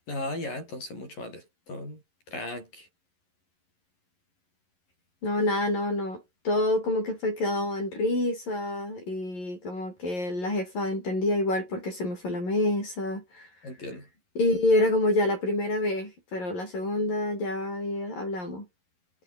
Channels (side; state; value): right; late; 11 ms